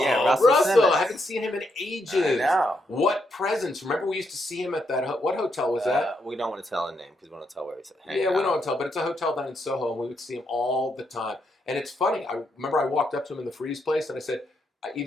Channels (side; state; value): both; normal; correlation 0.79